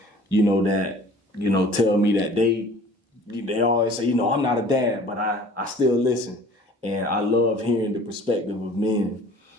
that, tell me that they always say, I'm not a dad, but I still listen. And I love hearing the perspective of men.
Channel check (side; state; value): both; normal; correlation 0.48